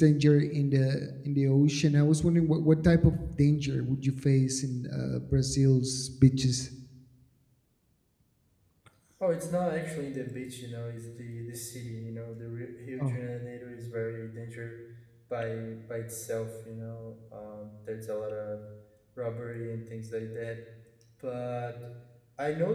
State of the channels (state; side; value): identical; both; correlation 1.00